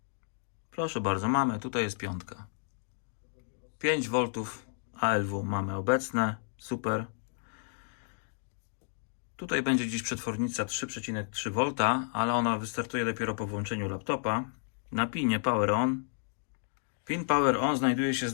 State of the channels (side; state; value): right; silent; digital silence